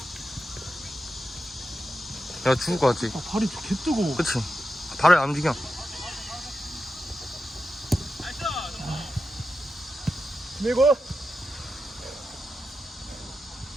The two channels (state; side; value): normal; both; correlation 0.90